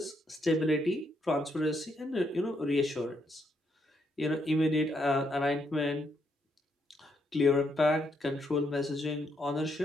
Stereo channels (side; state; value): both; normal; correlation 0.76